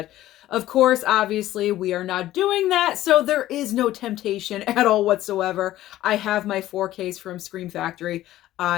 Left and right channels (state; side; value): quieter; right; 14.4 dB